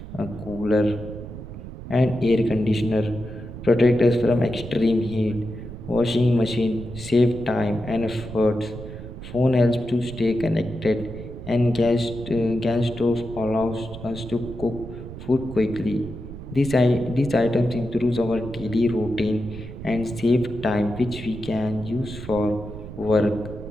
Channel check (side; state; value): right; noise; rumble, 12 dB below the sound